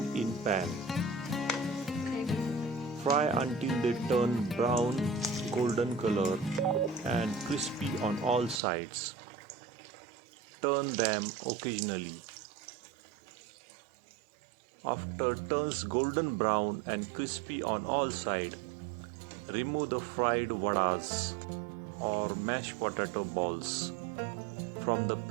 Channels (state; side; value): drops out; left; at 8.6 s